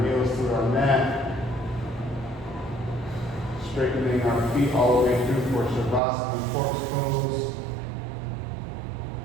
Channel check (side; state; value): left; drops out; at 6.0 s